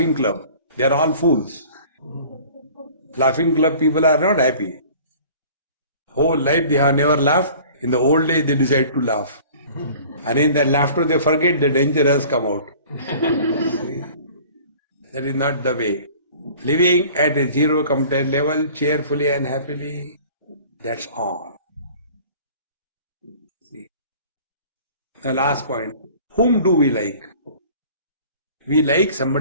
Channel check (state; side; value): inverted; both; correlation -0.47